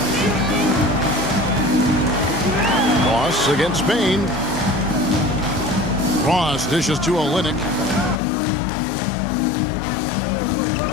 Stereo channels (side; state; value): right; drops out; at 8.2 s